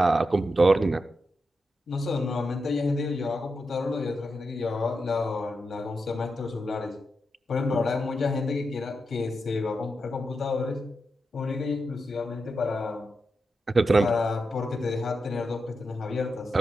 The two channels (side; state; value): both; normal; correlation 0.87